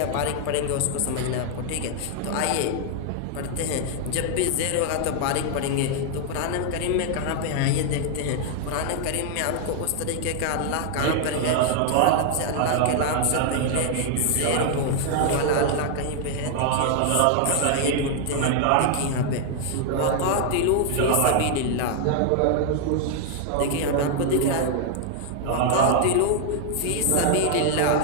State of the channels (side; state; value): both; different; correlation 0.00